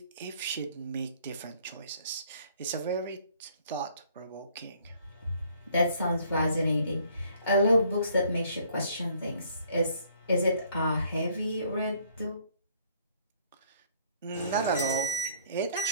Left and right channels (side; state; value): both; inverted; correlation -0.61